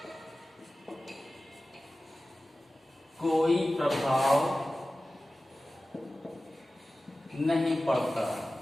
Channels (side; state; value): both; normal; correlation 0.96